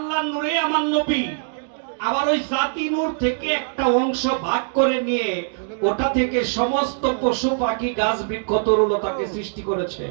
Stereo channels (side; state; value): left; silent; 64 dB below the other